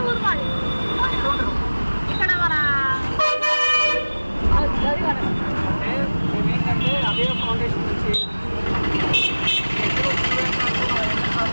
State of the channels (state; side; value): inverted; both; correlation -1.00